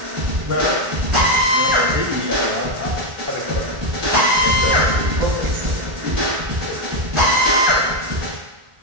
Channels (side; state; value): left; late; 1.4 ms